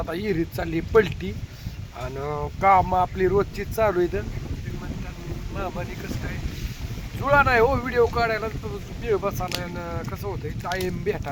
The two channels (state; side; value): identical; both; correlation 1.00